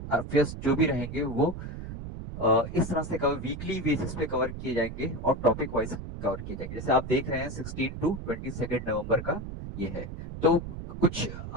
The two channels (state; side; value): noise; right; rumble, 8 dB below the sound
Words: अफेयर्स जो भी रहेंगे वो इस तरह से कवर वीकली बेसिस पे कवर किए जाएंगे और टॉपिक वाइज कवर किए जाएंगे। जैसे आप देख रहे हैं 16 टू 22 नवंबर का ये है। तो कुछ